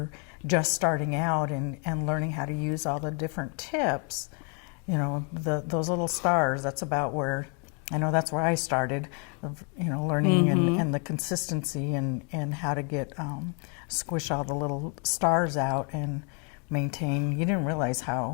just starting out and learning how to use all the different tips, you know, those little stars, that's about where, I know that's where I started, you know, learning and the consistency and how to get, squish all the little stars out and maintain. You didn't realize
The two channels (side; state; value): right; quieter; 37.6 dB